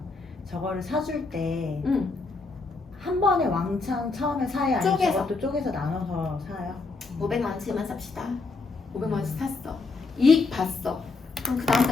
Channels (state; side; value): quieter; right; 3.9 dB